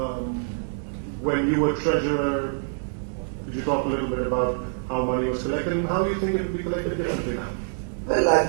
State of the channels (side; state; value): left; silent; digital silence